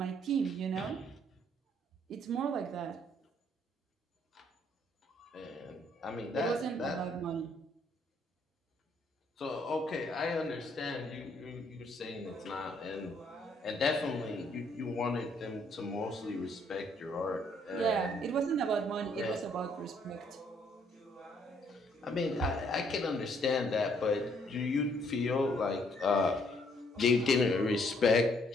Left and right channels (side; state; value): both; normal; correlation 0.67